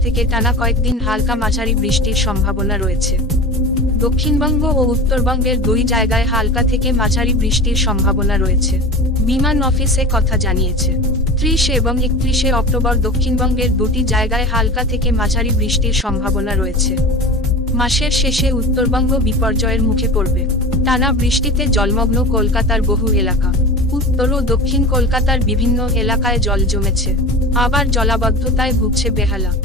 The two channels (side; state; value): both; normal; correlation 0.32